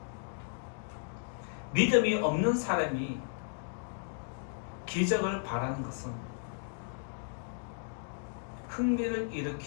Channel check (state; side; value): silent; right; digital silence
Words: 믿음이 없는 사람이 기적을 바라는 것은 흥미를